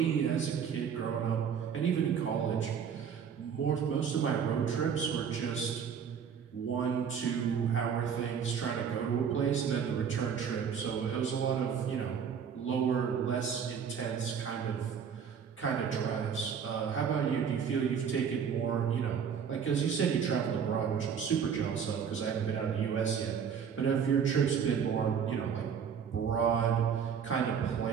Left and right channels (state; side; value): quieter; left; 7.3 dB